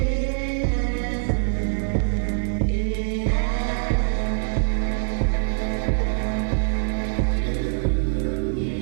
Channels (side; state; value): left; silent; digital silence